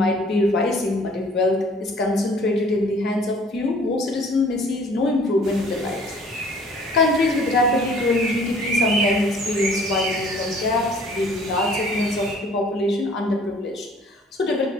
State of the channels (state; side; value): normal; both; correlation 0.54